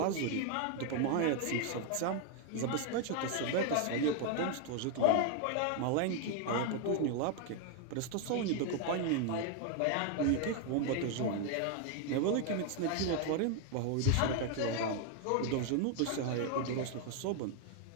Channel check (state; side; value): different; both; correlation 0.01